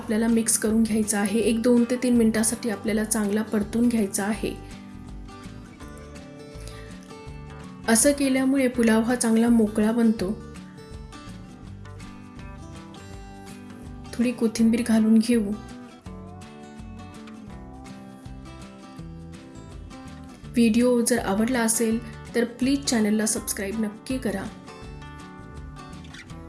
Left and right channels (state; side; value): identical; both; correlation 1.00